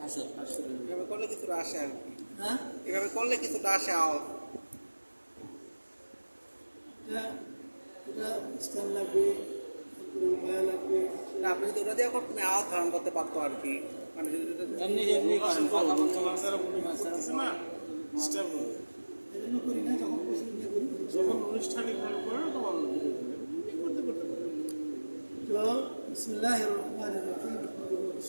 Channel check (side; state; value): both; inverted; correlation -1.00